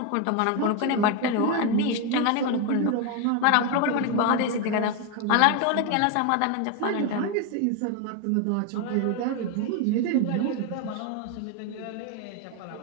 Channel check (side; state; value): both; different; correlation 0.01